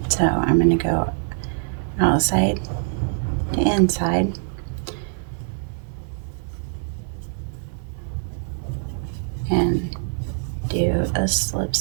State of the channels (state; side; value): silent; left; 63 dB below the other